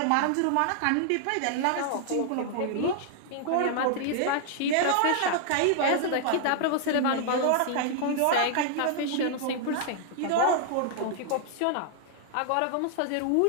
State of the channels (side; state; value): both; different; correlation 0.00